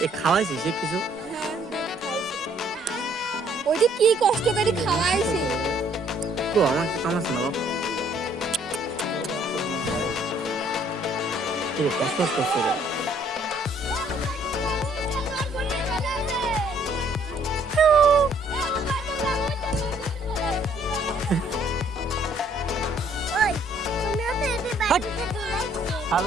এ খাওয়াইছিস সে কিছু ওই যে কি কষ্ট করে খাওয়াইছি তো আমাকে কামাচ্ছে না বাপ কি রে কষ্ট করছে রে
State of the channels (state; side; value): normal; both; correlation 0.63